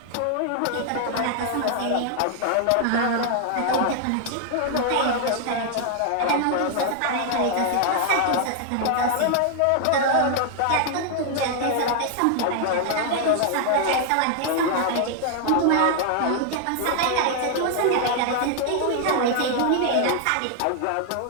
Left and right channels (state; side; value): different; both; correlation 0.00